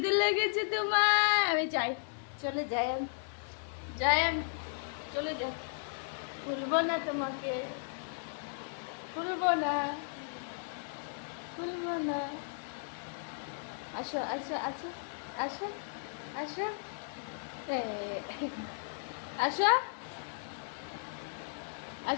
লেগেছে তোমার? আমি যাই, চলে যাই আমি, যাই আমি, চলে যাই, খুলবো না তোমাকে, খুলবো না, খুলবো না। আসো আসো আসো আসো আসো আসো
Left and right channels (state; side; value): silent; right; digital silence